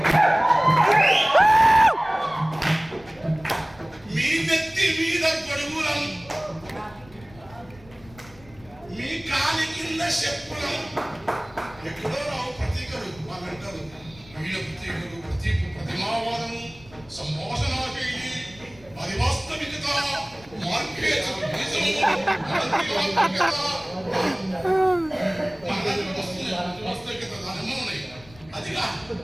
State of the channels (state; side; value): noise; left; rumble, 23 dB below the sound